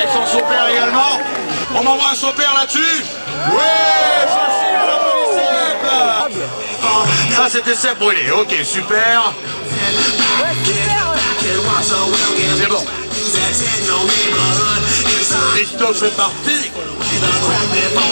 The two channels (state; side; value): inverted; both; correlation -1.00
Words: son saupère également. On m'envoie un saupère là-dessus. Ouais, facile, on applaudit Seb. Ça c'était Seb Brûlé, ok, super. C'est bon. Christophe est parti.